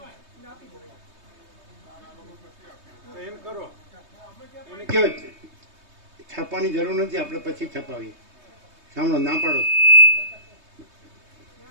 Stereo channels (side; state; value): left; late; 3.2 ms